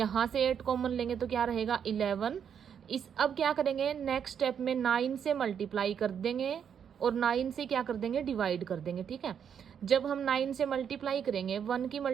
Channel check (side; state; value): left; quieter; 7.9 dB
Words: से 8 कॉमन लेंगे तो क्या रहेगा 11। इस अब क्या करेंगे, नेक्स्ट स्टेप में 9 से मल्टीप्लाई कर देंगे और 9 से क्या कर देंगे, डिवाइड कर देंगे। ठीक है, जब हम 9 से मल्टीप्लाई करेंगे, 1 की